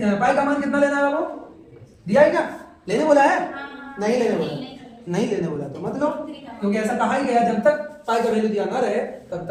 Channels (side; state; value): both; identical; correlation 1.00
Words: पाई का मान कितना लेना है आपको, दिया है क्या, लेने बोला है, नहीं लेने बोला तो मतलब, क्योंकि ऐसा कहा ही गया जब तक पाई का वैल्यू दिया ना रहे तब